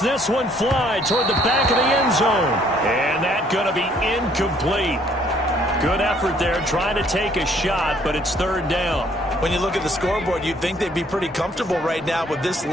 one fly toward the back of the end zone. And that's going to be incomplete. Good effort there trying to take a shot, but it's 3rd down. When you look at the scoreboard, you'd think they'd be pretty comfortable right now with this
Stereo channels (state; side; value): normal; both; correlation 0.63